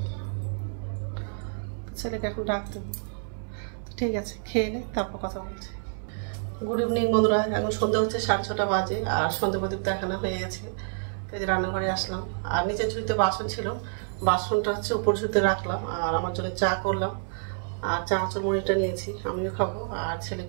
ছেলেকে এখন ডাক দেবো। ঠিক আছে, খেয়ে নে, তারপর কথা বলছি। গুড ইভিনিং বন্ধুরা, এখন সন্ধ্যা হচ্ছে 6:30 বাজে, আর সন্ধ্যা প্রদীপ দেখানো হয়ে গেছে। তো যে রান্নাঘরে আসলাম, আর নিচের ঝুড়িতে বাসন ছিল, বাসনটা হচ্ছে উপর ঝুড়িতে রাখলাম, আর আমার জন্য চা করলাম, আর চানাচুর মুড়িটা নিয়েছি, আমিও খাবো আর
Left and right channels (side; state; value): left; silent; 59 dB below the other